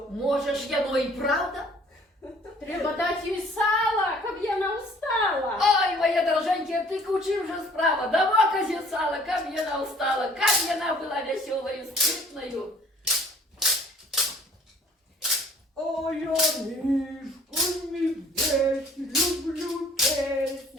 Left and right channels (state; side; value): normal; both; correlation 0.54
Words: Може ж яно і правда? Треба дати їй сала, щоб вона устала. Ой, моя дороженька, ти кучи вже справа. Дама козе сала, как вона устала, как вона була веселою, спритною. А я мишку медведь, люблю